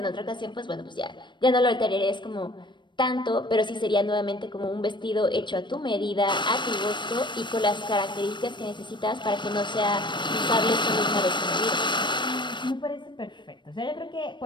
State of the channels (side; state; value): right; late; 0.22 ms